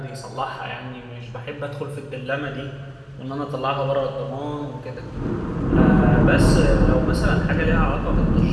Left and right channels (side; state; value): both; identical; correlation 1.00